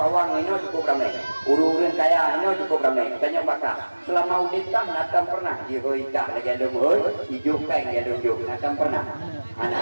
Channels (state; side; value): inverted; both; correlation -1.00